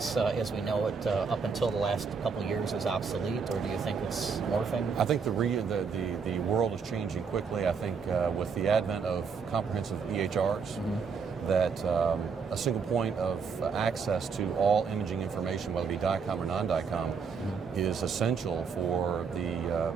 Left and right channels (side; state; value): left; quieter; 5.7 dB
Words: as we know it, up until the last couple of years, is obsolete, or do you think it's morphing? I think the world is changing quickly. I think with the advent of comprehensive EHRs, that a single point of access to all imaging information, whether it be DICOM or non-DICOM, is essential for